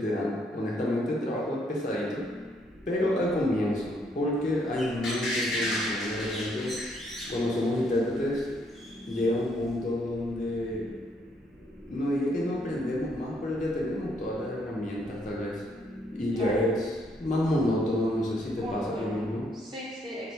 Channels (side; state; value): both; normal; correlation 0.71